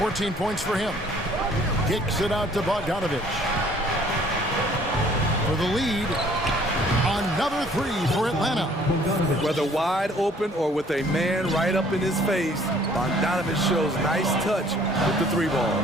points for him. Kicks it out to Bogdanovich. For the lead. Another 3 for Atlanta. Whether wide open or with a man right up in his face, Bogdanovich shows nice touch with the 3 ball.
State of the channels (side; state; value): both; normal; correlation 0.57